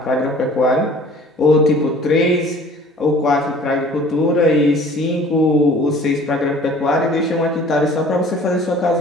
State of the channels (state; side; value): normal; both; correlation 0.49